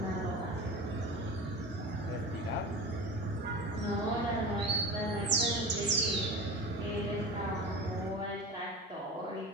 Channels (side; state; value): both; normal; correlation 0.31